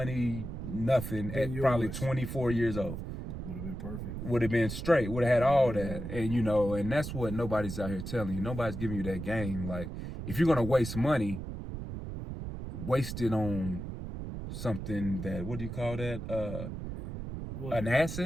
nothing, at probably 24 years old. Would have been perfect. Would have been straight. Would have had all that. And, and that's what nobody's out here telling you. Nobody's giving you that game. Like, if you're going to waste money, waste it on something that, what do you call that? An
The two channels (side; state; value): right; noise; rumble, 7 dB below the sound